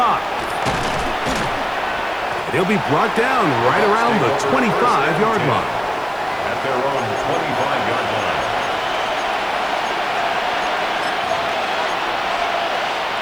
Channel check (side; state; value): left; noise; hiss, 29 dB below the sound